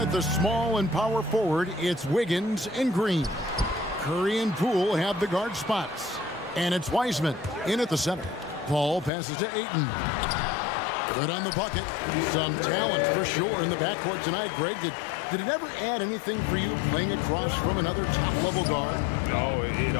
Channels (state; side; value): drops out; right; at 9.1 s